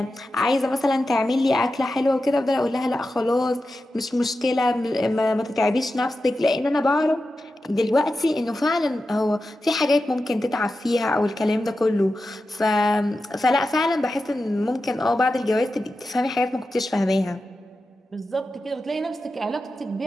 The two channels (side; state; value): both; normal; correlation 0.92